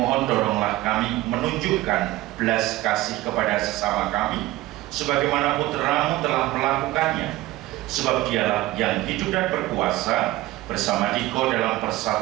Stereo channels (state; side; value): quieter; left; 17.3 dB